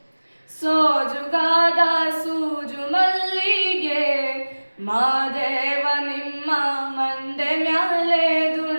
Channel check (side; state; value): both; inverted; correlation -1.00